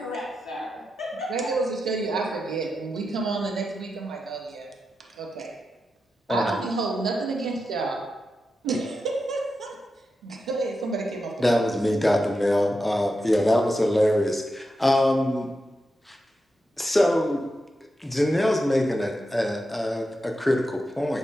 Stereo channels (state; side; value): normal; both; correlation 0.88